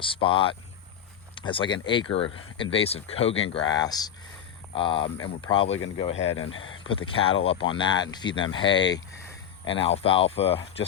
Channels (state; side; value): quieter; right; 9.1 dB